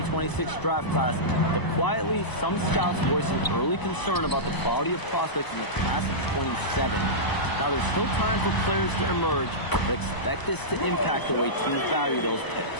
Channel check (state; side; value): late; right; 1.0 ms